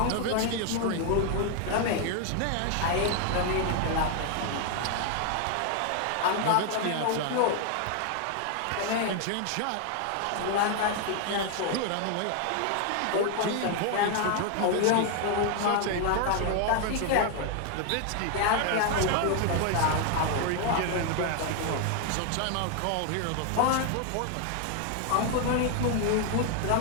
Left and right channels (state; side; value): different; both; correlation 0.00